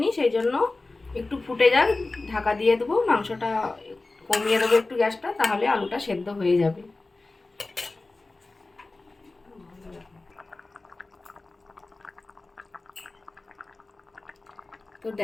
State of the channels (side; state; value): right; quieter; 3.3 dB